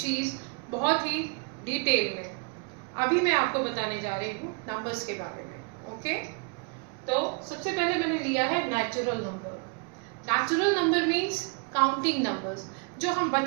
बहुत ही डिटेल में. अभी मैं आपको बताने जा रही हूँ नंबर्स के बारे में. ओके, तो सबसे पहले मैंने लिया है natural number. Natural number means counting numbers जो हम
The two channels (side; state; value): left; quieter; 35.0 dB